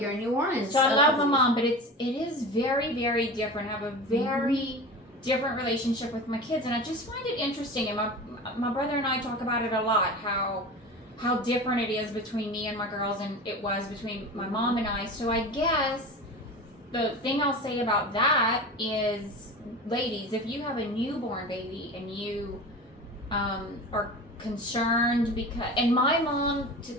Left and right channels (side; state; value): both; normal; correlation 0.31